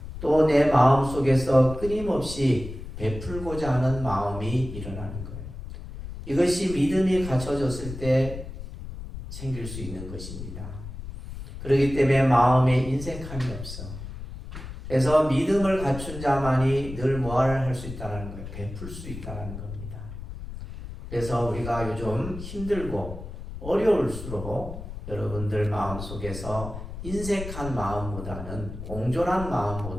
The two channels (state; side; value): noise; left; rumble, 10 dB below the sound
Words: 또 내 마음 속에서 끊임없이 베풀고자 하는 마음이 일어나는 거예요. 이것이 믿음이 갖춰졌을 때 생길 수 있는 것입니다. 그렇기 때문에 마음에 인색함이 없어. 그래서 믿음을 갖춘 자만이 늘 뭐를 할 수 있다는 거예요. 베풀 수 있다는 겁니다. 그래서 우리가 요즘 힘들고 어려울수록 여러분들 마음속에서 인색한 마음보다는, 옹졸한